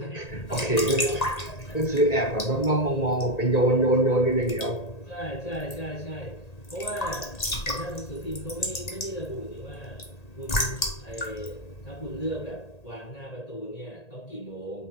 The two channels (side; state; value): right; late; 1.8 ms